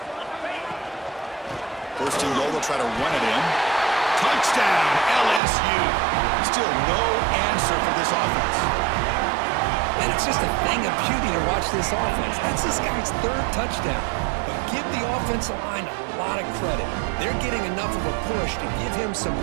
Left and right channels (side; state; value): left; drops out; at 5.4 s